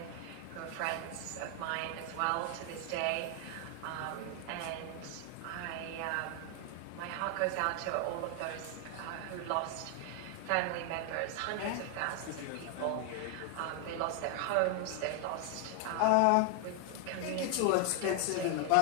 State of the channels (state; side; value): different; both; correlation 0.00